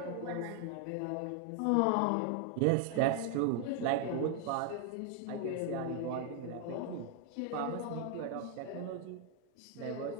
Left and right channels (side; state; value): both; different; correlation 0.00